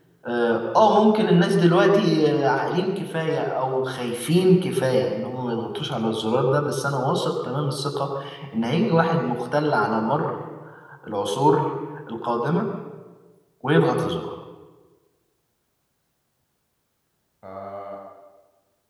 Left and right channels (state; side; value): identical; both; correlation 1.00